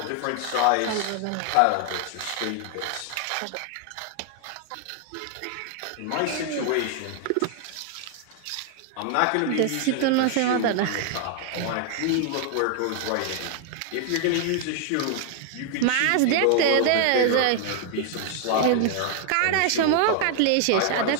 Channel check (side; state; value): both; different; correlation 0.00